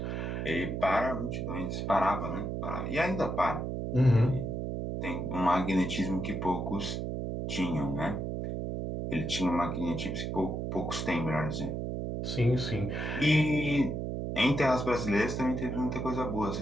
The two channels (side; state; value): right; noise; hum, 3 dB below the sound